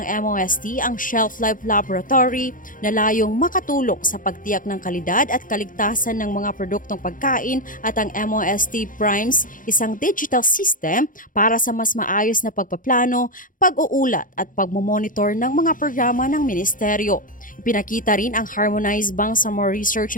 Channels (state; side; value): late; right; 0.39 ms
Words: MOST ang Shelf Life Laboratory na layong makatulong sa pagtiyak ng kalidad at kaligtasan ng mga produktong pagkain at ang MOST Primes, isang digital system para sa mas maayos na pagpaplano, pag-uulat at pagmomonitor ng mga programa ng ministeryo. Ipinakita rin ang Harmonized Bangsamoro